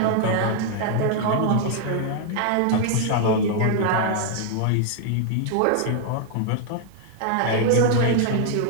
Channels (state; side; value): different; both; correlation 0.00